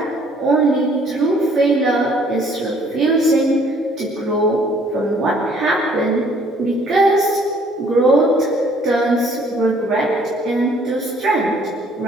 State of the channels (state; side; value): normal; both; correlation 0.60